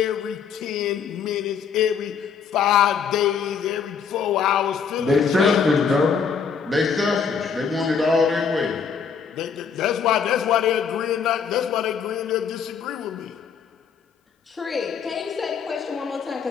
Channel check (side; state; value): right; quieter; 6.4 dB